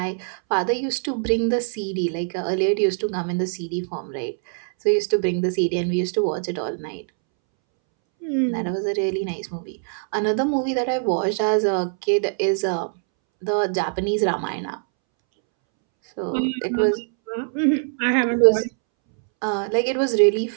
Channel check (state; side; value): silent; left; 63 dB below the other